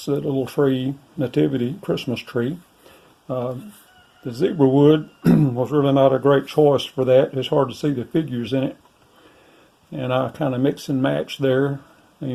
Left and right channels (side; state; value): both; identical; correlation 1.00